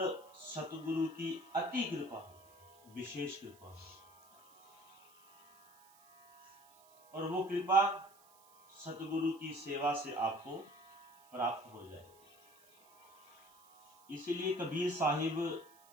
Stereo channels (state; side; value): noise; right; hiss, 27 dB below the sound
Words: सतगुरु की अति कृपा हो, विशेष कृपा हो। और वो कृपा सतगुरु की सेवा से आपको प्राप्त हो जाए। इसीलिए कबीर साहिब